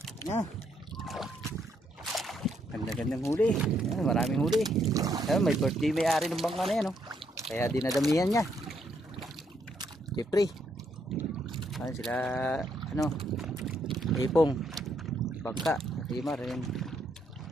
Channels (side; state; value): both; normal; correlation 0.74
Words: Yan. Ganda-gandang huli. Yan, maraming huli. Yan, may birthday may-ari ng bangka na yan, oh. Kaya dinadamihan niya. Jeffrey. Yan sila, ipong. Bangka. Rimar, yan.